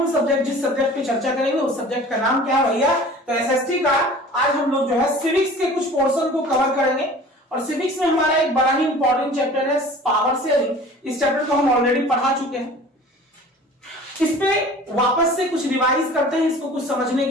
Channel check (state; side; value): normal; both; correlation 0.44